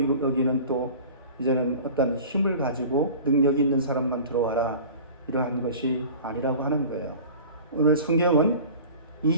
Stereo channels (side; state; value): both; inverted; correlation -0.41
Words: 또 이제는 어떤 힘을 가지고 능력이 있는 사람만 들어와라. 이러한 것이 아니라고 하는 거예요. 오늘 성경은